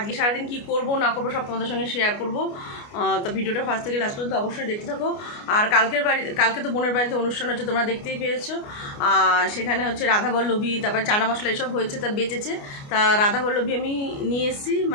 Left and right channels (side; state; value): right; late; 29 ms